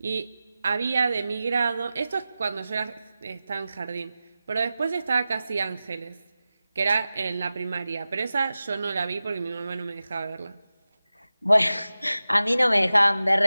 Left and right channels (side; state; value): both; inverted; correlation -0.95